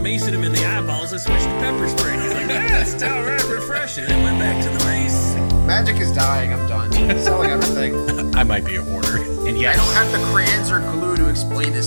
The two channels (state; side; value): inverted; both; correlation -1.00